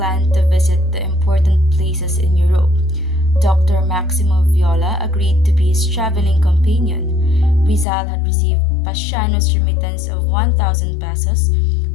to visit the important places in Europe. Dr. Maximo Viola agreed to be his traveling companion. Rizal had received Pasiano's remittance of 1,000 pesos,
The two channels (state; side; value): drops out; right; at 7.9 s